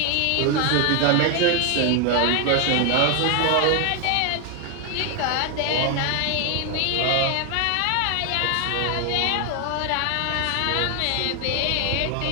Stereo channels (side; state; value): both; different; correlation 0.00